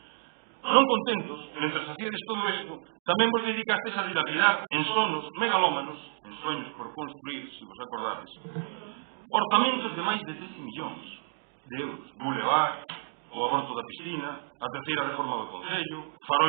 Non contentos, mentre facíades todo isto, tamén vos dedicastes a dilapidar en sonos megalómanos, en sueños por construir, se vos acordades, orzamentos de máis de 13 millóns de euros. Boulevard, o aborto da piscina, a terceira reforma do Concello,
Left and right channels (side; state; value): left; silent; digital silence